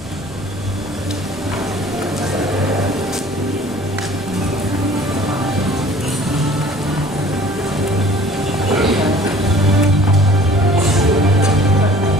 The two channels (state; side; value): noise; right; rumble, 20 dB below the sound